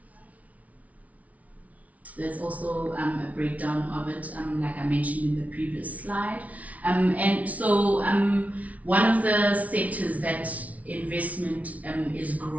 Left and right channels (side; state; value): left; late; 0.069 ms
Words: There's also a breakdown of it, like I mentioned in the previous slide. And so one of the sectors that investment is